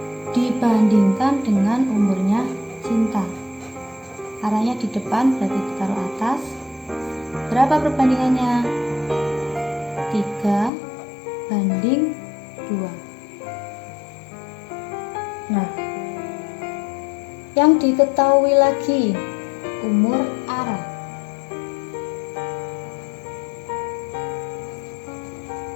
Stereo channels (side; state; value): right; drops out; at 10.7 s